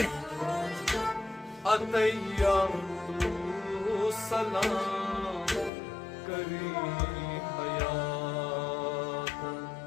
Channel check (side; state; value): right; drops out; at 5.7 s